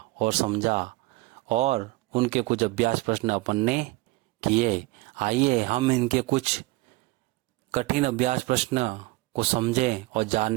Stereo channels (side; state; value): left; quieter; 22.0 dB